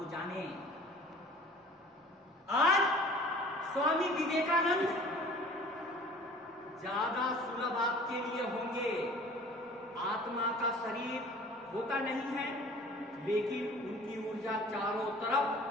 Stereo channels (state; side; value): normal; both; correlation 0.46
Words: जानें। आज स्वामी विवेकानंद ज्यादा सुलभ आपके लिए होंगे। आत्मा का शरीर होता नहीं है, लेकिन उनकी ऊर्जा चारों तरफ